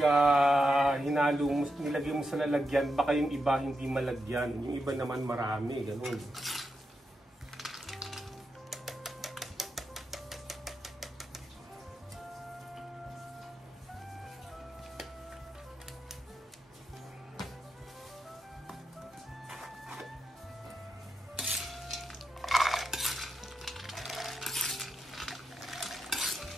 hinalo mo, nilagay mo sa lalagyan, baka yung iba hindi malagyan. Yung iba naman marami, ganun.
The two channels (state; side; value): normal; both; correlation 0.86